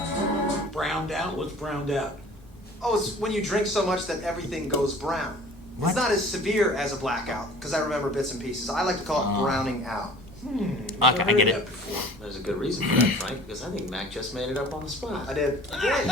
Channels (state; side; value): normal; both; correlation 0.47